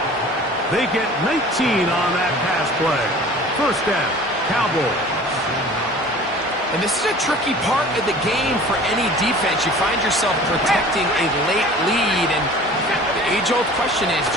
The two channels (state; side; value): normal; both; correlation 0.44